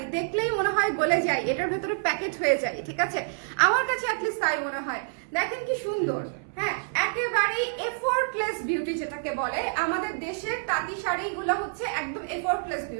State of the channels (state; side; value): silent; left; 60 dB below the other